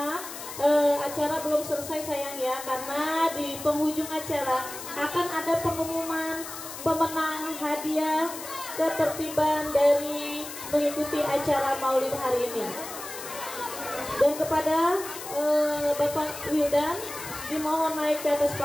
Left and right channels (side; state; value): left; noise; hiss, 11 dB below the sound